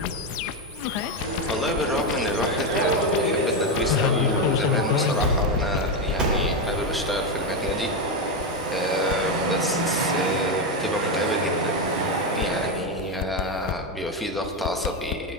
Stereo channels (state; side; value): normal; both; correlation 0.10